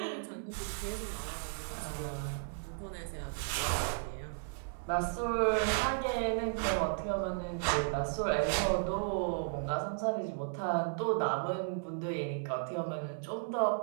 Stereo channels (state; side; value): silent; left; 55 dB below the other